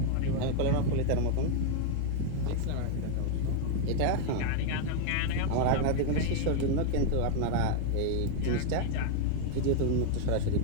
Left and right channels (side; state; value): both; different; correlation 0.01